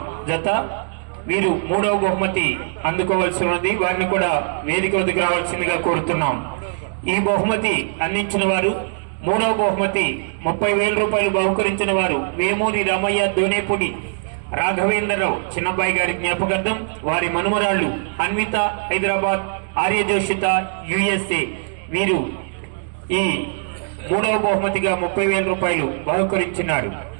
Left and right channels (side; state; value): left; silent; digital silence